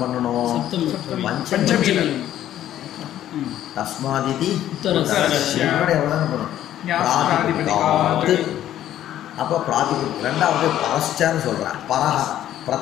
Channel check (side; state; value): right; quieter; 12.1 dB